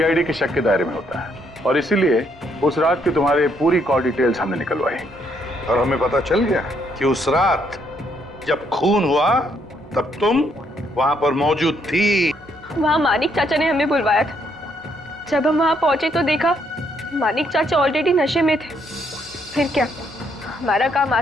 के शक के दायरे में होता है और इसीलिए उस रात की तुम्हारे पूरी कॉल डिटेल्स हमने निकलवाई और हमें पता चल गया कि उस रात जब खून हुआ तब तुम वहां पर मौजूद थी। वहां मानिक चाचा ने हमें बुलवाया था। जब हम वहां पहुंचे तो देखा मानिक चाचा ऑलरेडी नशे में थे। फिर क्या, हमारा काम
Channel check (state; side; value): normal; both; correlation 0.72